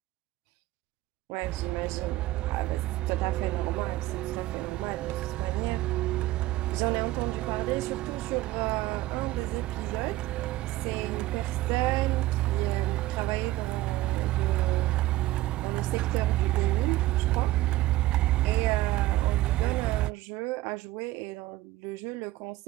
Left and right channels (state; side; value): quieter; left; 17.0 dB